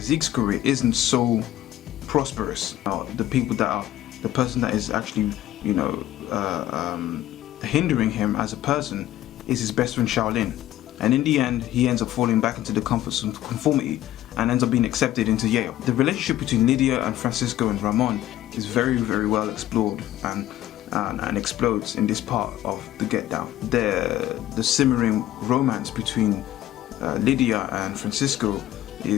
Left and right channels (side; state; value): right; quieter; 13.6 dB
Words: Zeke's career isn't so prosperous. The person that is actually, hindering him as a person is his best friend Shaolin. And in the end, he ends up falling back into the comforts of conformity and ends up being accepted into Yale. The relationship between Lydia and Francisco and Ramon is very, very well explored and explodes in this part of the Get Down. The simmering romance between Lydia and Francisco